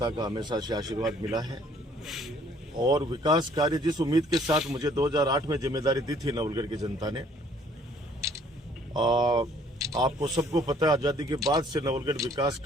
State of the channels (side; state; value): both; normal; correlation 0.60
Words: का हमेशा से आशीर्वाद मिला है और विकास कार्य जिस उम्मीद के साथ मुझे 2008 में जिम्मेदारी दी थी नवलगढ़ की जनता ने, आपको सबको पता है आज़ादी के बाद से नवलगढ़ विकास